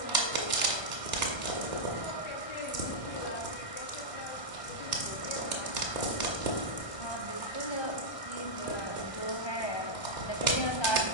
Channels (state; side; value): late; right; 1.2 ms